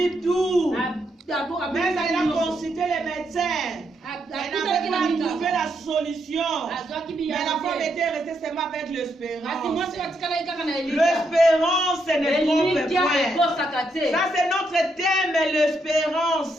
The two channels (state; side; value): normal; both; correlation 0.78